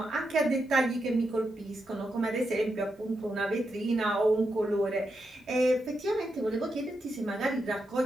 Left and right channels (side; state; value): both; normal; correlation 0.85